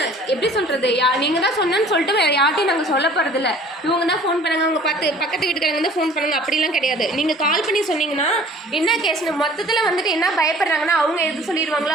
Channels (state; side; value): normal; both; correlation 0.50